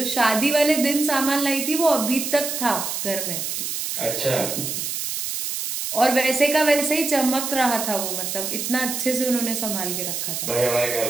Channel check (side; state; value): right; noise; hiss, 3 dB below the sound